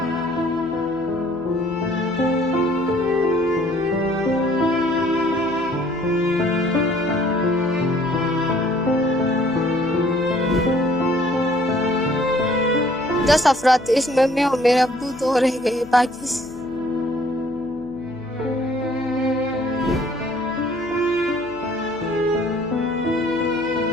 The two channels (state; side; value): noise; left; hum, 21 dB below the sound